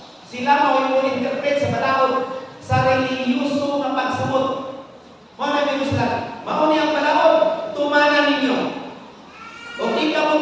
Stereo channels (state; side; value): identical; both; correlation 1.00